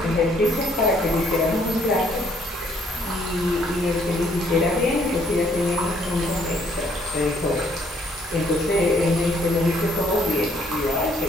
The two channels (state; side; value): normal; both; correlation 0.65